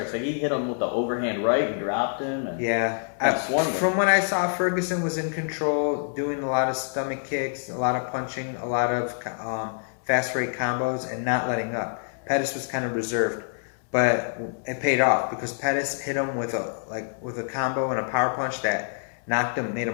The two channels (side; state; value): right; silent; 61 dB below the other